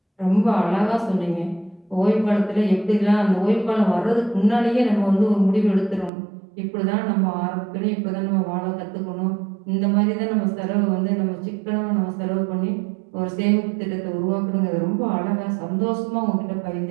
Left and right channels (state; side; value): drops out; left; at 6.1 s